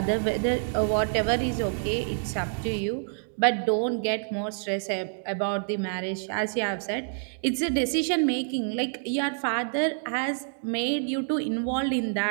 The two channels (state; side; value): silent; left; digital silence